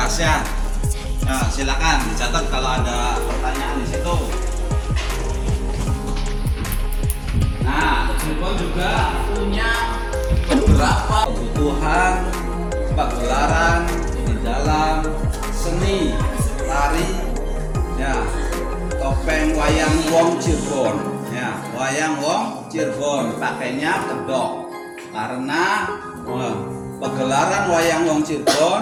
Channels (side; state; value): both; identical; correlation 1.00